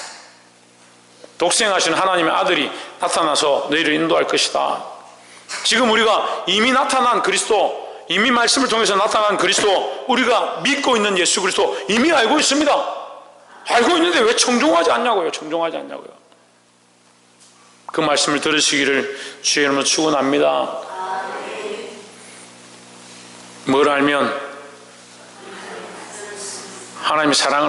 독생하신 하나님의 아들이 나타나서 너희를 인도할 것이다. 지금 우리가 이미 나타난 그리스도, 이미 말씀을 통해서 나타난 그리스도, 우리가 믿고 있는 예수 그리스도 이미 알고 있습니다. 알고 있는데 왜 청종하지 않냐고요. 청종하지 않냐고요. 그 말씀을 들으시기를 주의 이름으로 축원합니다. 뭘 알면? 하나님의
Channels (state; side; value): identical; both; correlation 1.00